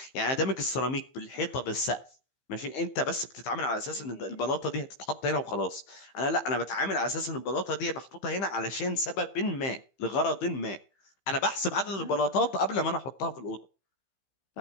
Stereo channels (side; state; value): right; late; 15 ms